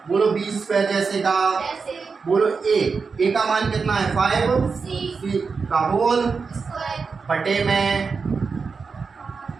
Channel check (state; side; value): quieter; left; 5.0 dB